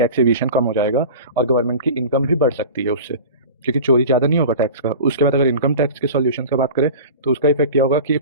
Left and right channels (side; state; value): both; inverted; correlation -0.36